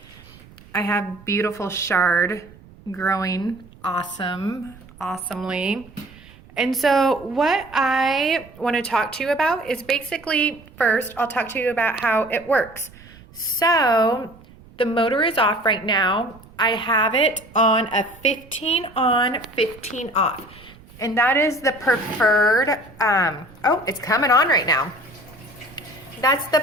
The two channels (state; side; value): noise; right; rumble, 23 dB below the sound